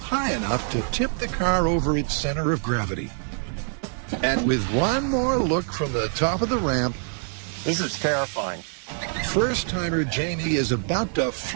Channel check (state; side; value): silent; left; 62 dB below the other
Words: enough to tip the car over its center of gravity. And with one more look from the top of the ramp, This is terrifying. first-timer Jamie is about to